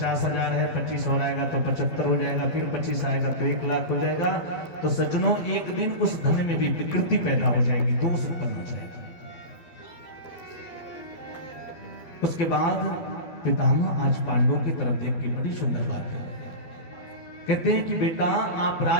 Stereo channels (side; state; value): right; late; 12 ms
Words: है, 25 और आएगा तो 75 हो जाएगा, फिर 25 आएगा तो 1 लाख हो जाएगा। तो सज्जनों, एक दिन उस धन में भी विकृति पैदा हो जाएगी, दोष उत्पन्न हो जाएगा। उसके बाद पितामह आज पांडवों की तरफ देख के बड़ी सुंदर बात है, कहते हैं कि बेटा, आप